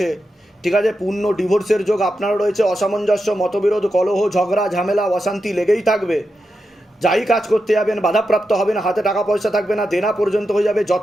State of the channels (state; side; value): normal; both; correlation 0.88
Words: ঠিক আছে? পূর্ণ ডিভোর্সের যোগ আপনারও রয়েছে। অসামঞ্জস্য, মতবিরোধ, কলহ, ঝগড়া, ঝামেলা, অশান্তি লেগেই থাকবে। যাই কাজ করতে যাবেন বাধাপ্রাপ্ত হবেন, হাতে টাকা পয়সা থাকবে না, দেনা পর্যন্ত হয়ে যাবে,